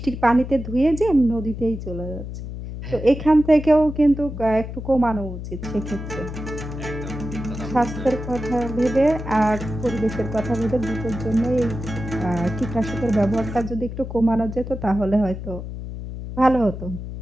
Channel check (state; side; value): noise; left; hum, 8 dB below the sound